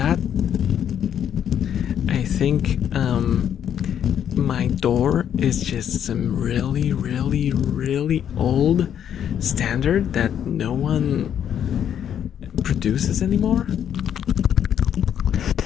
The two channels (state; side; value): quieter; right; 9.3 dB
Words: I think my door is just some really, really, really old standard that no one produces anymore.